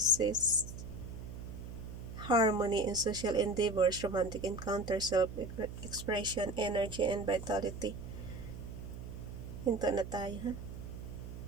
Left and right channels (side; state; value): right; noise; hum, 10 dB below the sound